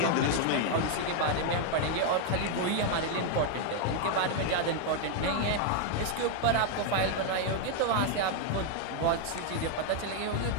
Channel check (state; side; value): different; both; correlation 0.00